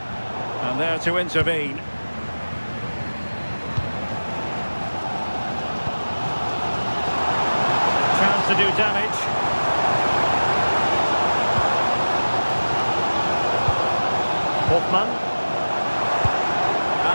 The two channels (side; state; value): both; inverted; correlation -1.00